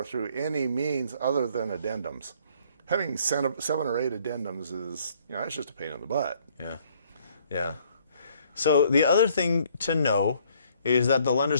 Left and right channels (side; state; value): both; inverted; correlation -0.63